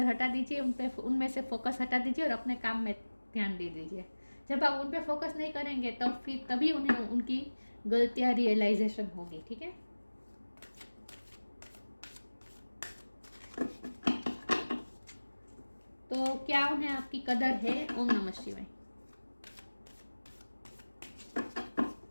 हटा दीजिए, उनमें से फोकस हटा दीजिए और अपने काम में ध्यान दे दीजिए। जब आप उन पे फोकस नहीं करेंगे तब फिर तभी उन्हें उनकी गलतियाँ रियलाइजेशन होगी। ठीक है, तो क्या उन्हें आपकी कदर है? ओम नमः शिवाय।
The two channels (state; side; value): inverted; both; correlation -1.00